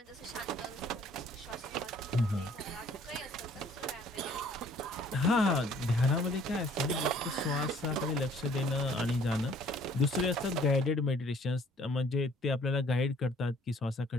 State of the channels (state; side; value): normal; both; correlation 0.57